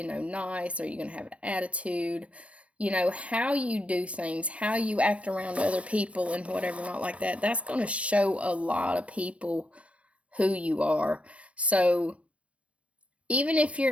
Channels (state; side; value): late; left; 0.063 ms